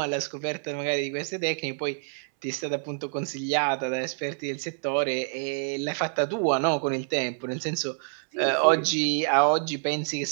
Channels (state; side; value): silent; left; 60 dB below the other